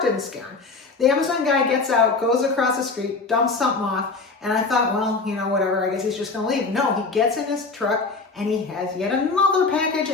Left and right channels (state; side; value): quieter; right; 4.1 dB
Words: didn't scare him. The Amazon guy gets out, goes across the street, dumps something off, and I thought, well, whatever, I guess he's just gonna leave. No, he gets in his truck and he has yet another package